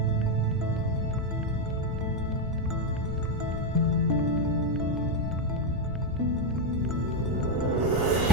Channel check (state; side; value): normal; both; correlation 0.04